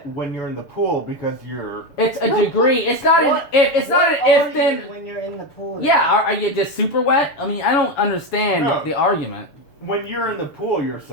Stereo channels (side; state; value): right; late; 6.9 ms